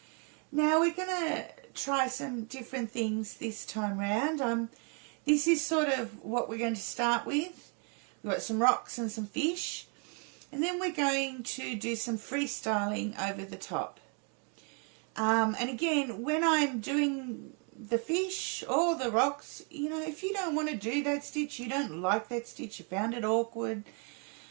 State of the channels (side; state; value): left; quieter; 38.7 dB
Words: Now we're going to try some different things this time round. This is sort of what we're going to start with. We've got some rocks and some fish, and then we're going to do some freestyling over the top. And again, when I'm doing the fish or the rocks, you know, if you don't want to do that stitch, you don't like that stitch, you found it awkward,